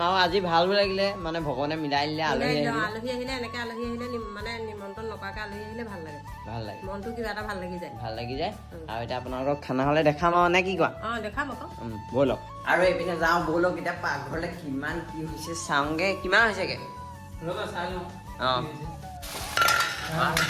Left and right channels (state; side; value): identical; both; correlation 1.00